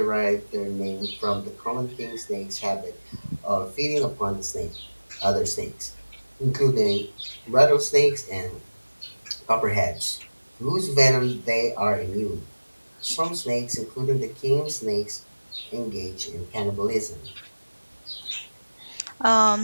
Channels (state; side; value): inverted; both; correlation -1.00